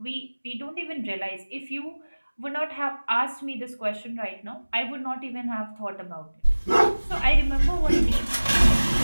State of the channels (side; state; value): both; inverted; correlation -1.00